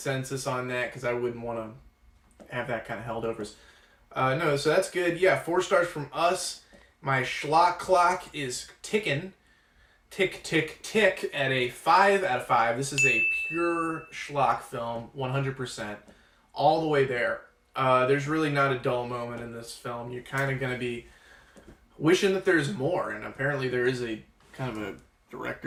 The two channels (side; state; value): both; identical; correlation 1.00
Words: on that, because I wouldn't want to have that kind of held over us. No, so that's good. Yeah, 4 stars from us. My Schlock clock is ticking. Tick, tick, tick at a 5 out of 5. This is a pure Schlock film, 100%. All the way there. There's really not a dull moment in this film. You're kind of going to be wishing that there's more, and apparently there is a kind of a